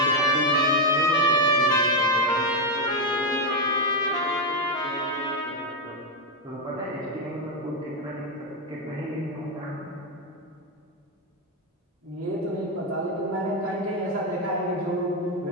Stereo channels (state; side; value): normal; both; correlation 0.05